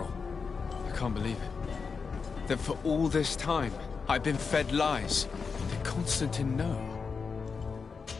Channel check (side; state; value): right; quieter; 5.2 dB